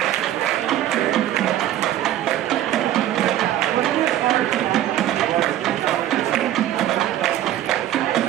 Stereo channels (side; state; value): left; quieter; 12.7 dB